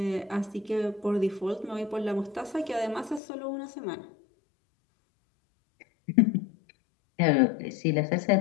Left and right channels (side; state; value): right; drops out; at 3.2 s